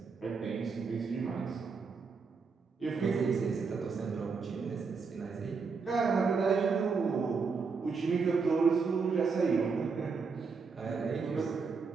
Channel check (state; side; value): quieter; left; 5.0 dB